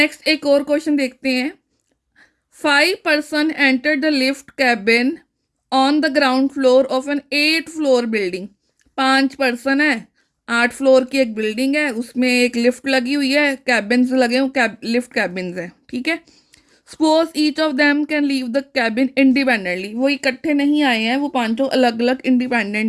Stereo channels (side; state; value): both; identical; correlation 1.00